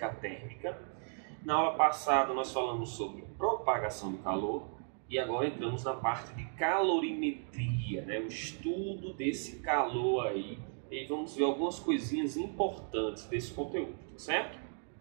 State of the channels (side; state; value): left; silent; 54 dB below the other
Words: térmica. Na aula passada nós falamos sobre propagação de calor e agora entramos na parte de calorimetria, né? O estudo desse calor aí, e vamos ver algumas coisinhas importantes desse conteúdo, tá certo?